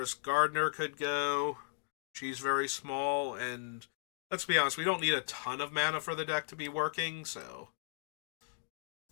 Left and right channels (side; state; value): right; silent; digital silence